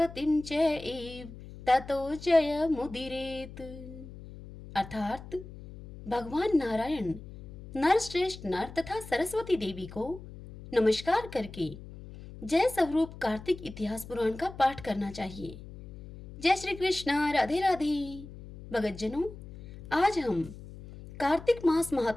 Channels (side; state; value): left; noise; hum, 15 dB below the sound